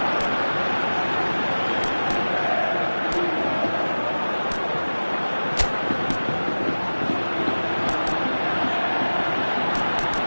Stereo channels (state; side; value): inverted; both; correlation -1.00